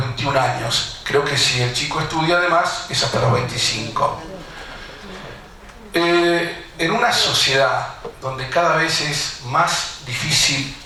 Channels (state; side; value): identical; both; correlation 1.00